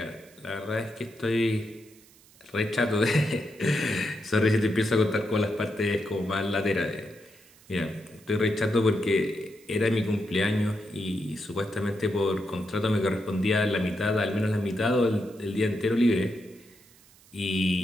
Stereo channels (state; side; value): noise; right; hiss, 27 dB below the sound